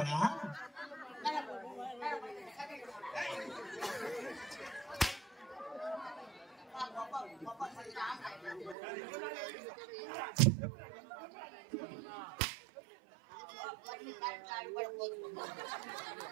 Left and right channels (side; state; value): left; drops out; at 8.8 s